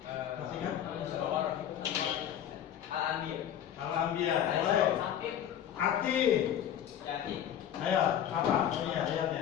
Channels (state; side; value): quieter; right; 10.1 dB